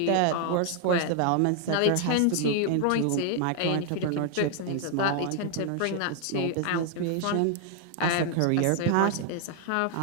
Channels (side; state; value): both; different; correlation 0.00